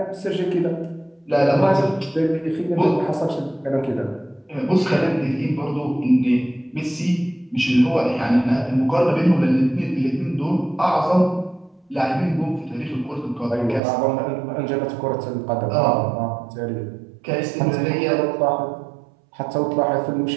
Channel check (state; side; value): drops out; left; at 13.8 s